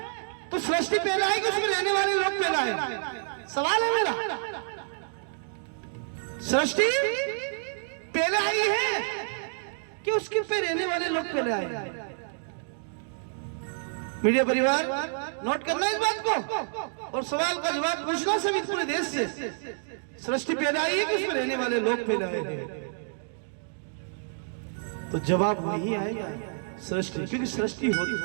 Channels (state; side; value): silent; left; digital silence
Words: तो सृष्टि पहले आई कि उसमें रहने वाले लोग पहले आए? सवाल है मेरा। सृष्टि पहले आई है कि उसके पे रहने वाले लोग पहले आए? मीडिया परिवार नोट करना इस बात को, और सवाल का जवाब पूछना सभी पूरे देश से। सृष्टि पहले आई है कि उसमें रहने वाले लोग पहले आए? तो जवाब नहीं आएगा सृष्टि, क्योंकि सृष्टि होती